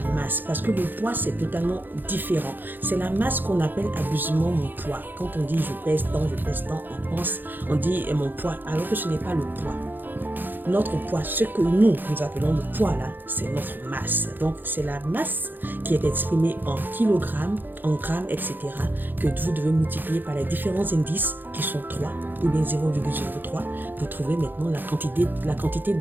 masse, parce que le poids c'est totalement différent. C'est la masse qu'on appelle abusivement mon poids. Quand on dit je pèse tant, on dit mon poids, alors que ce n'est pas le poids. Notre poids, ce que nous appelons le poids là, c'est notre masse. Donc c'est la masse qui est exprimée en kilogrammes, en grammes, etc. que vous devez multiplier par les différents indices qui sont 3 ou bien 0,03 pour trouver maintenant la quantité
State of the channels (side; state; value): left; late; 0.090 ms